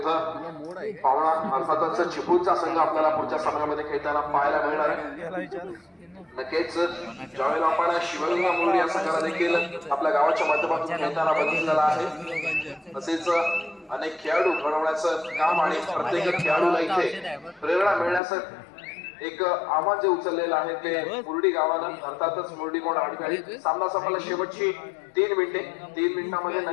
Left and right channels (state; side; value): drops out; right; at 18.2 s